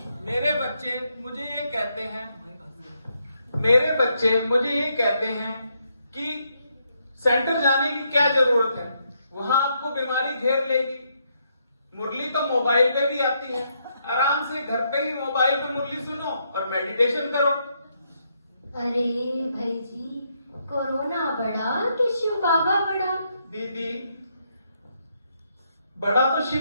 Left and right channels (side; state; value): both; inverted; correlation -0.77